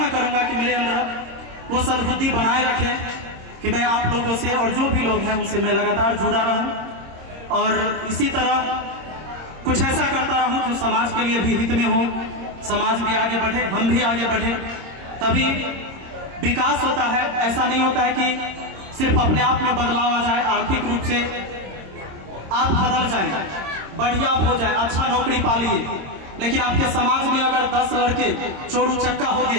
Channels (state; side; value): late; left; 26 ms